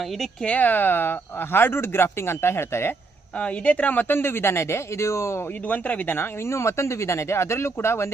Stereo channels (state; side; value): quieter; left; 3.9 dB